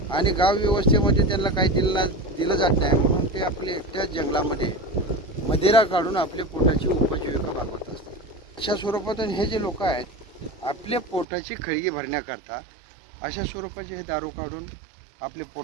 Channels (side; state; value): left; drops out; at 11.2 s